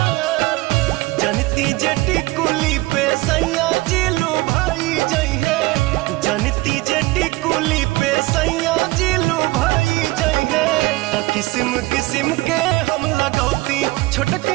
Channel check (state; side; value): quieter; left; 20.8 dB